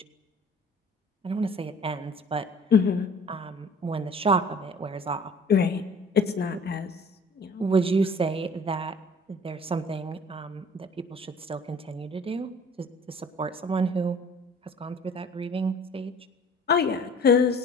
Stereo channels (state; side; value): normal; both; correlation 0.49